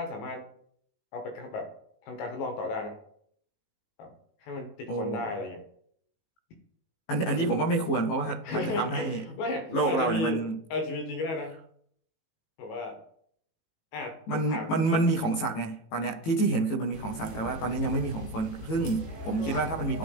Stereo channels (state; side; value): late; right; 18 ms